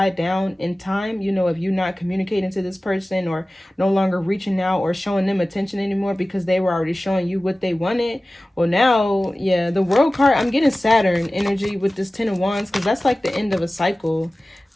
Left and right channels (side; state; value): both; normal; correlation 0.97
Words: down in time, you know, if you're not communicating to this person or no longer reaching out or showing them attention anymore because they were already showing you what they wanted. Well, now, yeah, the World card, I'm getting Saturn energy with this 10 of Wands because that's like the end of a cycle,